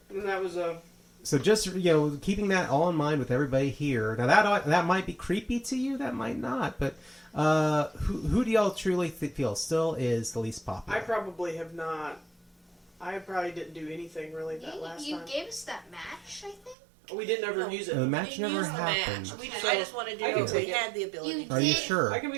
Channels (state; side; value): drops out; left; at 16.8 s